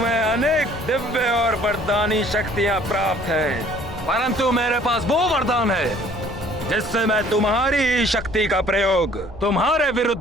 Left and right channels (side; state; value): both; normal; correlation 0.56